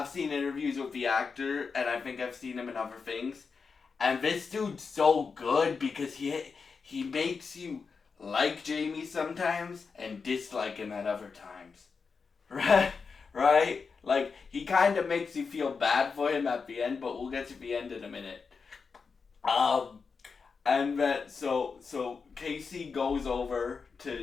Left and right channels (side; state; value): right; quieter; 5.2 dB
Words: seen interviews with the actor, and I think I've seen him in other things, and this dude's so good because he makes you like Jamie sometimes and dislike him at other times, right? Right? Like, he kind of makes you feel bad for him at the end, but we'll get to the end in a minute. And then so Casey goes over